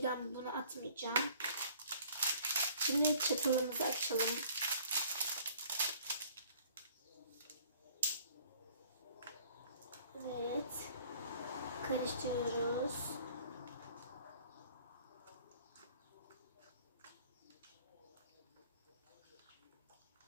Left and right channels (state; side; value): inverted; both; correlation -0.55